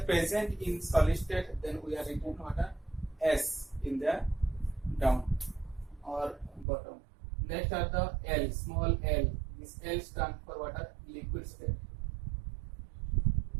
present in solid state, then we are written water S in the down or bottom. Next are the L, small L. This L stands for water liquid state.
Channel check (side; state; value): left; drops out; at 6.7 s